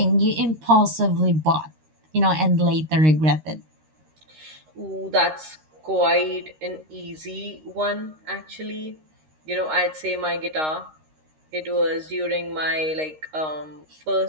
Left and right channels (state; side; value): late; left; 13 ms